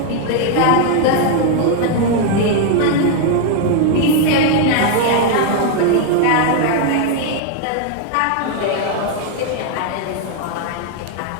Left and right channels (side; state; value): both; different; correlation 0.00